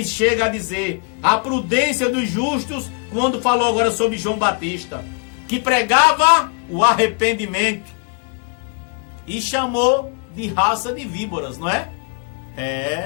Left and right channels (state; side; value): quieter; right; 38.8 dB